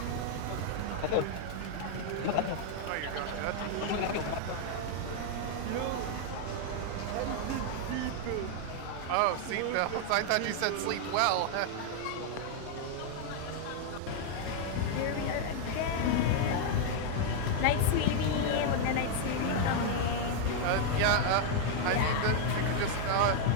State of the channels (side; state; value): both; different; correlation 0.00